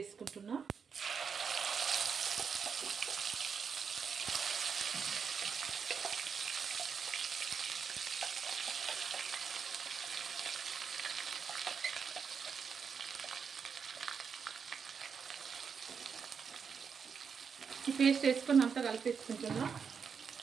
ఈ పేస్ట్ వేసుకొని అంతా కలిపేసుకుంటున్నా.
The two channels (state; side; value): quieter; left; 6.3 dB